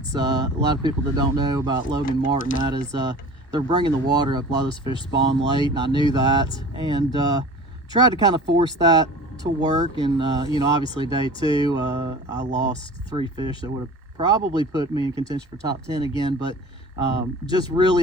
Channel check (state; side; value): normal; both; correlation 0.39